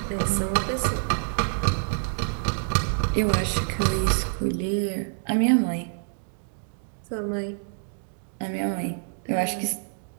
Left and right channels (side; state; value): left; silent; digital silence